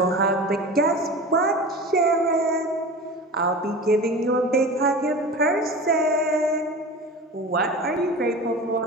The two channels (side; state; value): both; normal; correlation 0.33